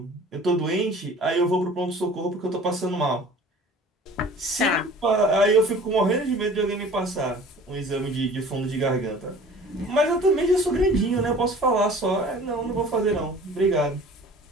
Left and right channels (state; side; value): normal; both; correlation 0.46